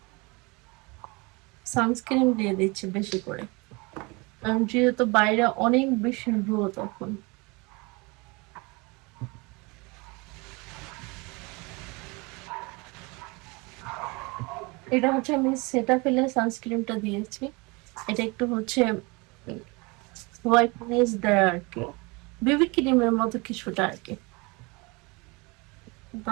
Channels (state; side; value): quieter; left; 27.0 dB